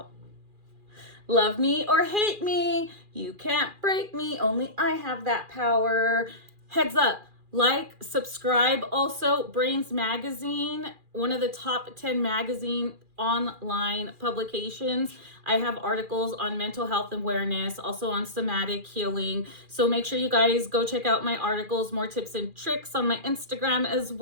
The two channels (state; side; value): late; left; 2.4 ms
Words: Love me or hate me. You can't break me. Only I have that power. Heads up. Like, subscribe. Also, Brains Magazine, one of the top 10 magazine online publications. I have articles on mental health awareness, also on somatic healing. So make sure you guys go check out my articles, more tips and tricks on my Instagram as